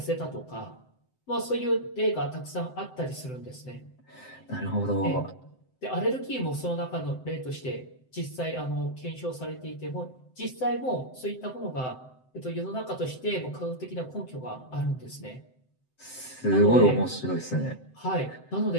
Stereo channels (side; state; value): right; late; 7.8 ms